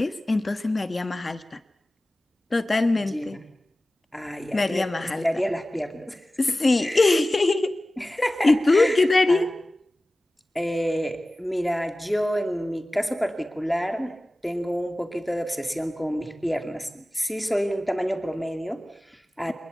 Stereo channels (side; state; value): both; normal; correlation 0.97